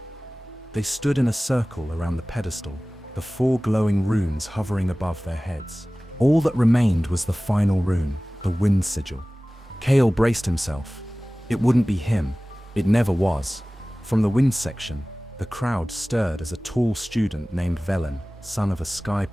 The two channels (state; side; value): normal; both; correlation 0.98